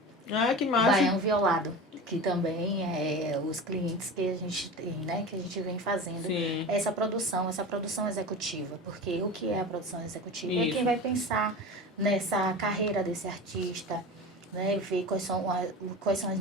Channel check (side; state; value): both; normal; correlation 0.31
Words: Ah, que massa. Baião Violado, que também é os clientes que a gente tem, né? Que a gente vem fazendo. Sim. Essa produção executiva. Porque o que é a produção executiva? Isso. É quem vai pensar nessa carreira desse artista, né? Ver quais são as